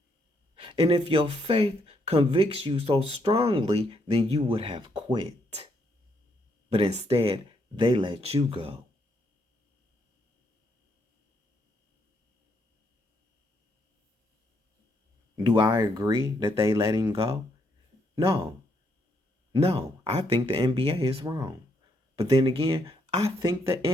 And if your faith convicts you so strongly, then you would have quit. But instead, they let you go. Do I agree that they let him go? No. No, I think the NBA is wrong. But then again, I think the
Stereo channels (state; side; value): normal; both; correlation 0.75